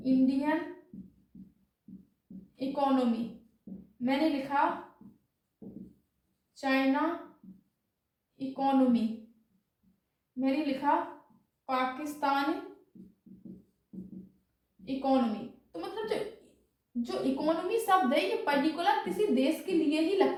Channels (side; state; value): both; identical; correlation 1.00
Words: इकोनॉमी, मैंने लिखा चाइना इकोनॉमी, मैंने लिखा पाकिस्तान इकोनॉमी। तो मतलब जो इकोनॉमी शब्द है ये पर्टिकुलर किसी देश के लिए ही